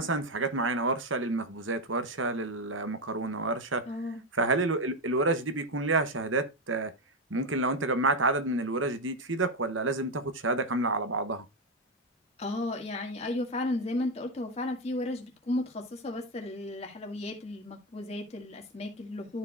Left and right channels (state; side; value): normal; both; correlation 0.09